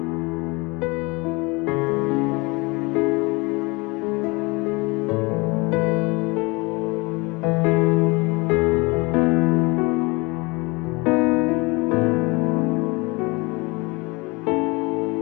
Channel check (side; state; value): right; quieter; 26.1 dB